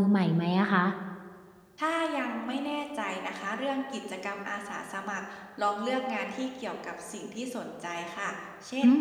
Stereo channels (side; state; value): both; identical; correlation 1.00